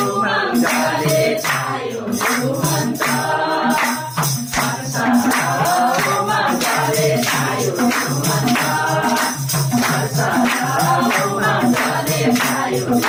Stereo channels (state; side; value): identical; both; correlation 1.00